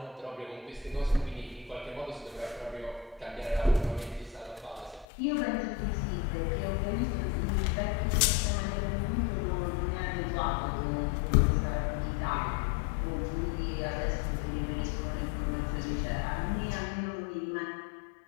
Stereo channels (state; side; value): drops out; right; at 5.1 s